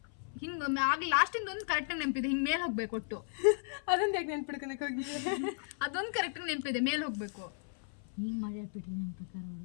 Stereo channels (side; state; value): right; silent; 54 dB below the other